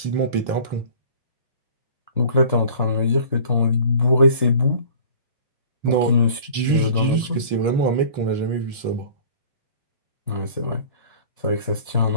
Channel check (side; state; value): both; inverted; correlation -0.46